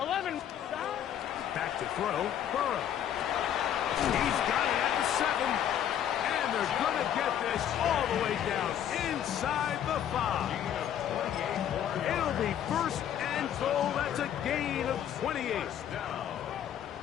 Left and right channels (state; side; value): quieter; right; 10.1 dB